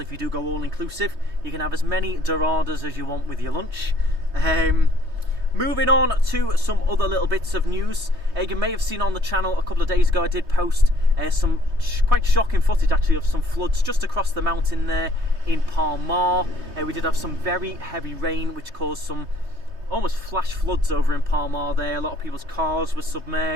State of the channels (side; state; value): left; late; 3.2 ms